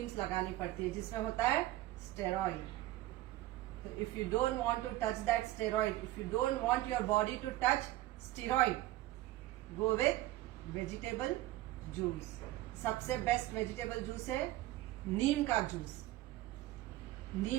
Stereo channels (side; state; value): left; quieter; 16.3 dB